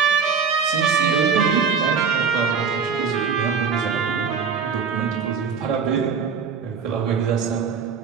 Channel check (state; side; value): quieter; left; 6.0 dB